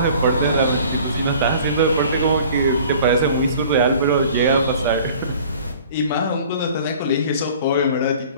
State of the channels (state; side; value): inverted; both; correlation -0.48